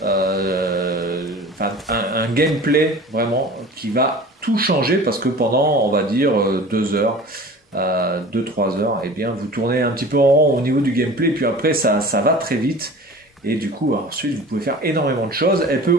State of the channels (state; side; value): normal; both; correlation 0.40